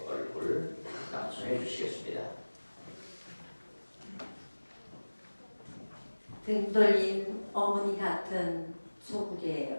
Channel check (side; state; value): both; inverted; correlation -1.00